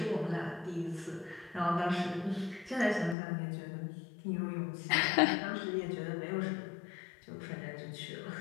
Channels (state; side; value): drops out; right; at 3.2 s